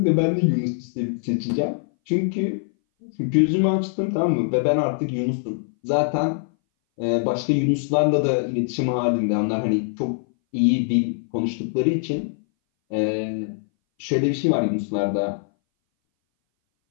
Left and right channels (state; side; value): silent; right; 60 dB below the other